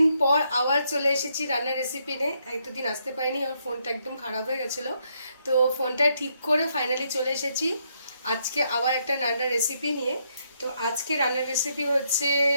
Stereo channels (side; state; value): both; inverted; correlation -0.75